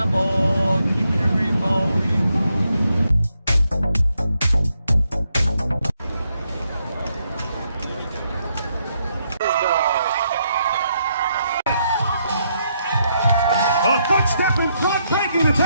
keeping it remote. A footstep in front, breaking the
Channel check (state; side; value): inverted; both; correlation -0.78